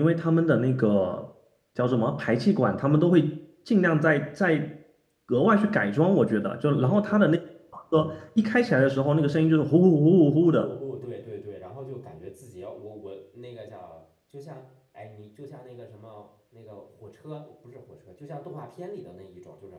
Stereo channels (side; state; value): both; identical; correlation 1.00